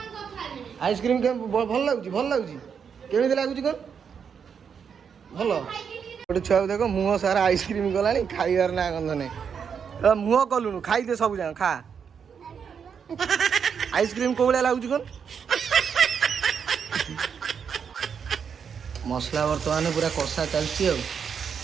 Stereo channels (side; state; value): left; quieter; 6.9 dB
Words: ଆଇସ୍କ୍ରିମ୍ ଭଲ ଲାଗୁଛି କେମିତି ଲାଗୁଛି କ'ଣ ଭଲ ଗୋଟେ ଛୁଆକୁ ଦେଖ ମୁହଁ ସାରା ଆଇସ୍କ୍ରିମ୍ ଗଲାଣି ଖାଇବାର ନା ଗନ୍ଧ ନାହିଁ ମୁହଁ କଲୁଣୁ ଖାଇଦେ ସବୁ ଯାକ ଖା ଆଇସ୍କ୍ରିମ୍ କୋଉ ଭଳିଆ ଲାଗୁଛି କ'ଣ ମସଲା ବର୍ତ୍ତମାନ ପୁରା କଷା ଚାଲିଛି ଆଉ